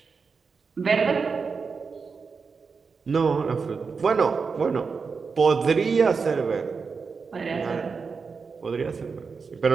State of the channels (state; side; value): quieter; left; 5.1 dB